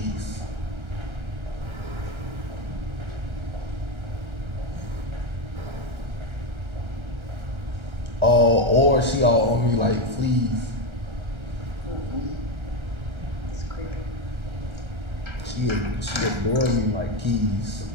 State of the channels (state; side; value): late; left; 1.3 ms